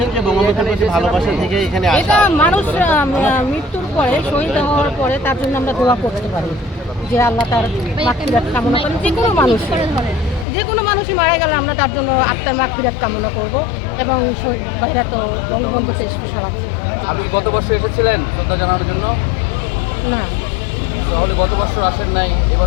যে বঙ্গবন্ধুর প্রতি ভালোবাসা থেকে এখানে আসা। এটা মানুষ মৃত্যুর পরে, শহীদ হওয়ার পরে তার জন্য আমরা দোয়া করতে পারি যে আল্লাহ তার মাগফিরাত কামনা করেন। যে কোনো মানুষই মারা গেলে আমরা তার জন্য আত্মার মাগফিরাত কামনা করব। এবং শহীদ ভাইরা তো বঙ্গবন্ধুকে স্পেশাল আছে। আপনি গত বছর এসেছিলেন শ্রদ্ধা জানানোর জন্য? না, তাহলে গত বছর আসেন নাই,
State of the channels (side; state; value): right; drops out; at 10.5 s